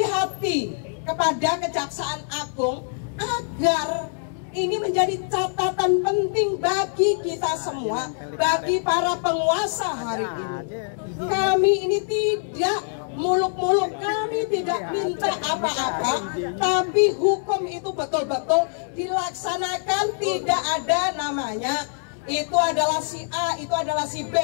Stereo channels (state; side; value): silent; right; digital silence